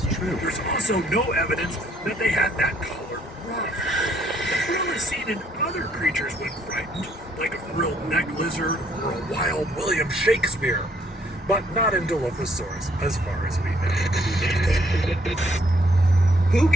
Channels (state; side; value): normal; both; correlation 0.66